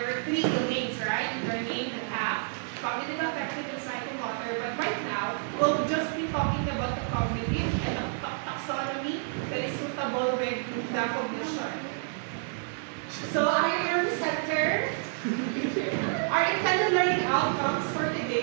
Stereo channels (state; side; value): silent; left; 58 dB below the other